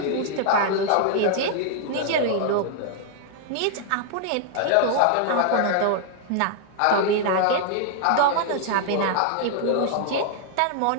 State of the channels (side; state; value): both; different; correlation 0.00